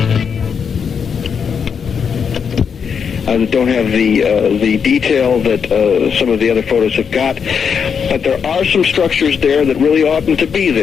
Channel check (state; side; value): quieter; right; 6.7 dB